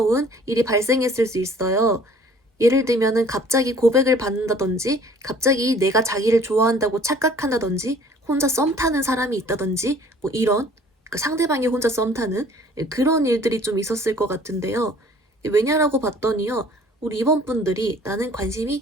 일이 발생했을 수 있어요. 예를 들면은 갑자기 고백을 받는다든지, 갑자기 내가 자기를 좋아한다고 착각한다든지, 혼자 썸 타는 사람이 있다든지, 뭐 이런, 그 상대방이 혼자 썸 타는 그런 일들이 좀 있었을 것 같은데요. 왜냐라고 봤더니요, 우리 이번 분들이 나는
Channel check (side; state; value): both; normal; correlation 0.53